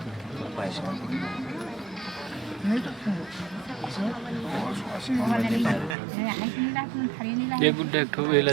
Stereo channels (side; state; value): left; drops out; at 6.0 s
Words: ये गुड्डे ठो वेला